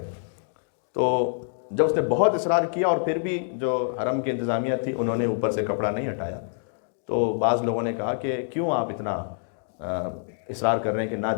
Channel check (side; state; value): right; silent; digital silence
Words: تو جب اس نے بہت اصرار کیا اور پھر بھی جو حرم کی انتظامیہ تھی انہوں نے اوپر سے کپڑا نہیں ہٹایا، تو بعض لوگوں نے کہا کہ کیوں آپ اتنا اصرار کر رہے ہیں کہ نہ